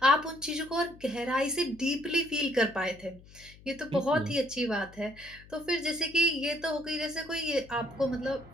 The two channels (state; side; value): noise; left; hum, 22 dB below the sound